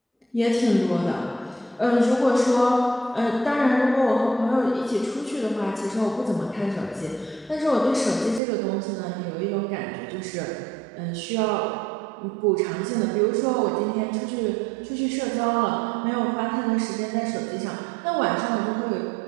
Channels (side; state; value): left; drops out; at 8.4 s